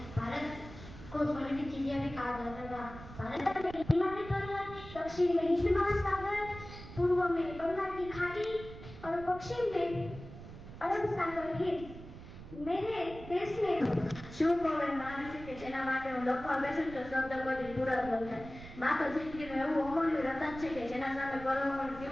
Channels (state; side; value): noise; right; rumble, 14 dB below the sound